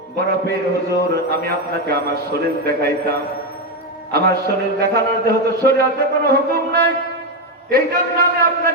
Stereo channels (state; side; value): normal; both; correlation 0.08